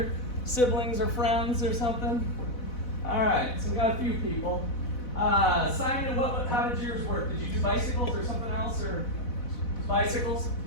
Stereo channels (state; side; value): late; right; 4.0 ms